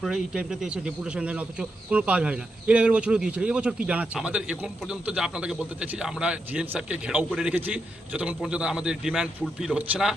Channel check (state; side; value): normal; both; correlation 0.84